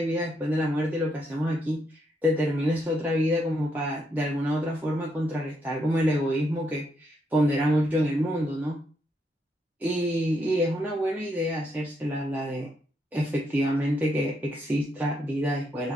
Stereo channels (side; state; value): both; normal; correlation 0.78